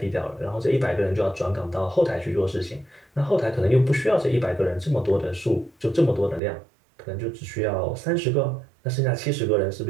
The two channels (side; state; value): left; drops out; at 6.4 s